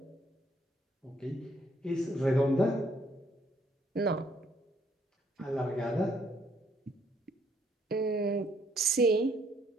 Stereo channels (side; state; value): both; normal; correlation 0.68